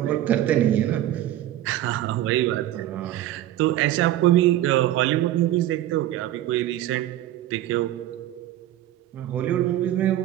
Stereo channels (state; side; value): quieter; left; 13.4 dB